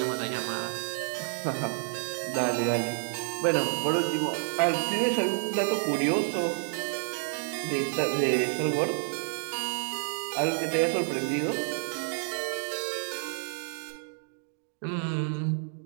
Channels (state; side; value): silent; left; digital silence